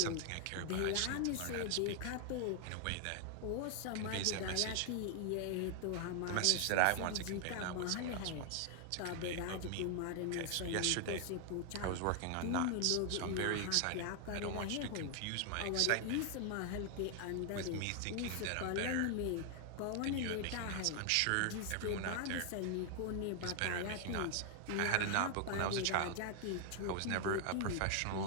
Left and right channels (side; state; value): both; different; correlation 0.00